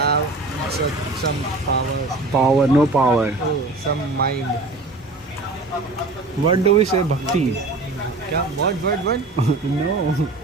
some power. Power, no power. Oh, some mind. What do we say? Bhakti. Kya? What? No.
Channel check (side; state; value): left; quieter; 3.2 dB